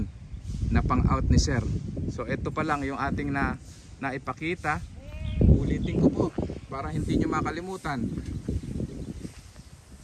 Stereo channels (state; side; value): identical; both; correlation 1.00